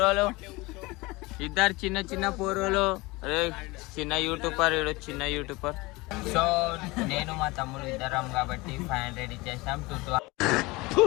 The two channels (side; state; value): right; quieter; 23.0 dB